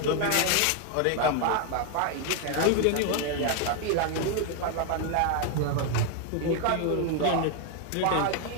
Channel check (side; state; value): both; different; correlation 0.01